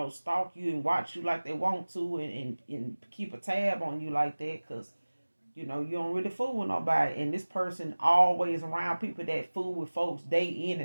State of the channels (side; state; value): both; inverted; correlation -1.00